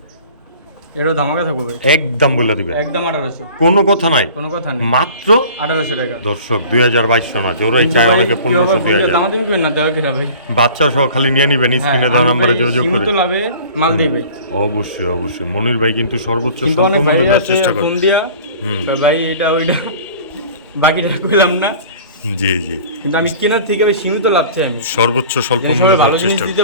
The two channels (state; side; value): inverted; both; correlation -0.45